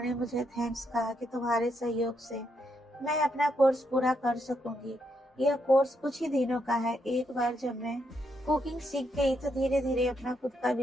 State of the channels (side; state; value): both; normal; correlation 0.78